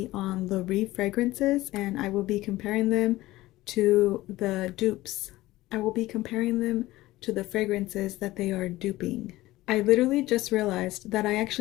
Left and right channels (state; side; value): quieter; right; 17.5 dB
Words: on the Rive fragrances and I will be comparing them to the dupes. I will be comparing them to the fragrances that they are duping. I literally just realized that I